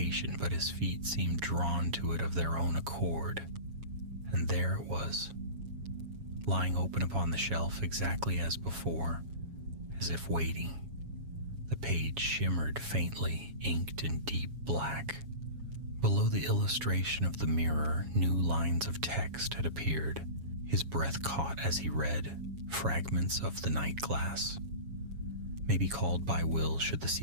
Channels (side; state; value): left; late; 7.2 ms